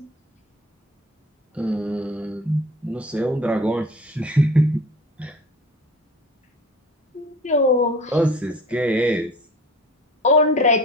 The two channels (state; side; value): normal; both; correlation 0.42